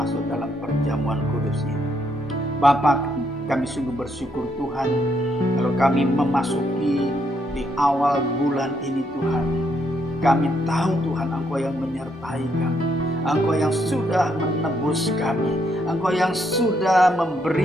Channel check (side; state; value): both; normal; correlation 0.75